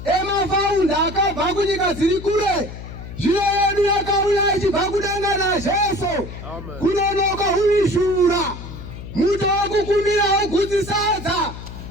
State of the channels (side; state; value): left; noise; hum, 12 dB below the sound